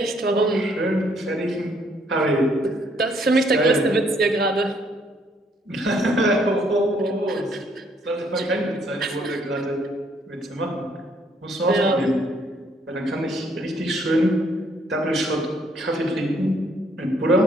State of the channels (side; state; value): both; normal; correlation 0.67